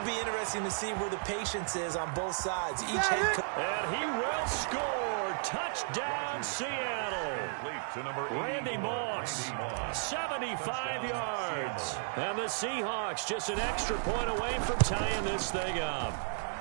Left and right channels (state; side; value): silent; left; digital silence